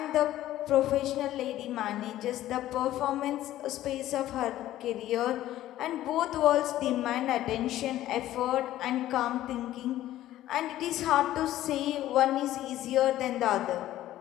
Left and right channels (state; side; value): quieter; right; 13.9 dB